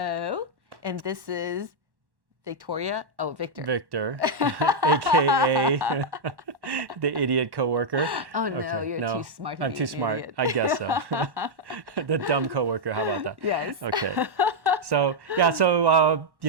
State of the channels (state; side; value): late; left; 1.1 ms